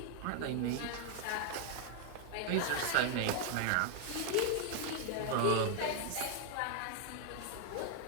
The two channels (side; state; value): both; different; correlation 0.00